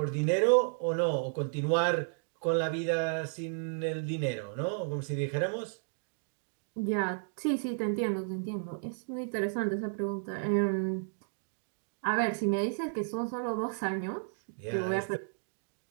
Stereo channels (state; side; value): silent; left; digital silence